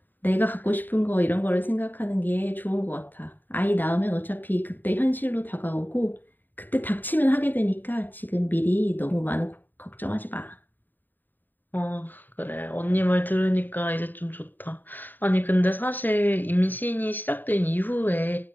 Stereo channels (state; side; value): late; right; 0.090 ms